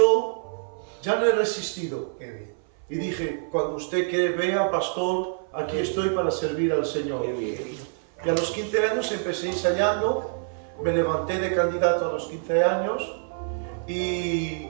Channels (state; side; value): silent; left; 57 dB below the other